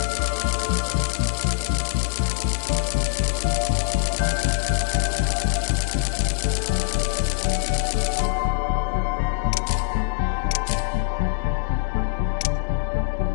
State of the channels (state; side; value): silent; right; digital silence